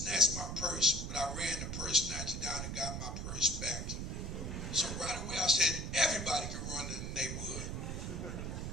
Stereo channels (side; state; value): right; noise; rumble, 4 dB below the sound